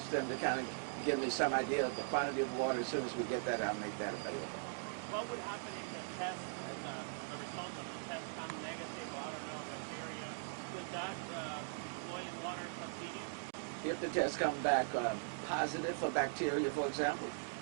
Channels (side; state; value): left; silent; digital silence